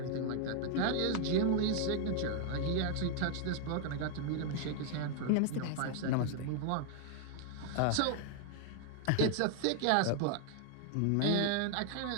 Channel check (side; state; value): both; different; correlation 0.00